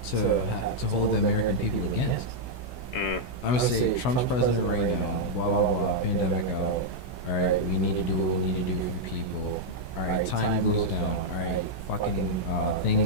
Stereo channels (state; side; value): late; right; 16 ms